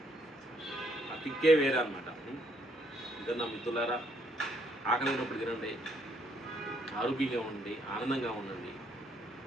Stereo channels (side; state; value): both; normal; correlation 0.70